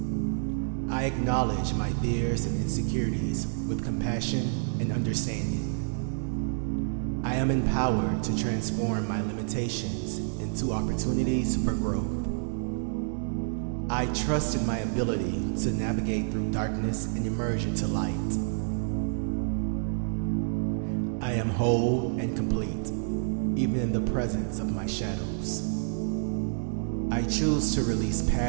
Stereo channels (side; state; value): left; silent; 59 dB below the other